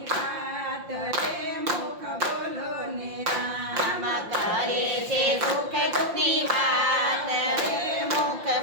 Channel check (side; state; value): left; late; 5.7 ms